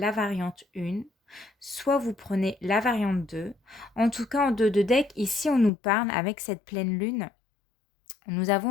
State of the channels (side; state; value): right; drops out; at 5.7 s